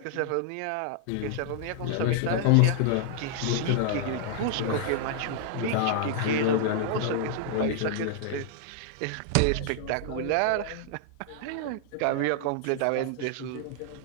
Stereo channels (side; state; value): both; different; correlation -0.01